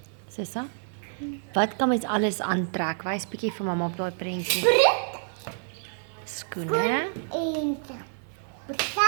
Sissa, wat kan mens alles aantrek? Wys bietjie vir mamma op daai prentjie. Prit Skoene, en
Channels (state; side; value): silent; left; 56 dB below the other